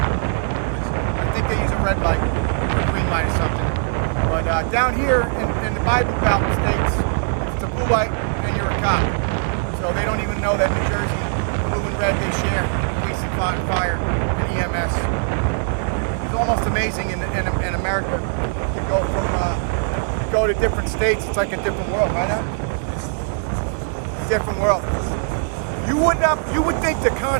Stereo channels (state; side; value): silent; left; digital silence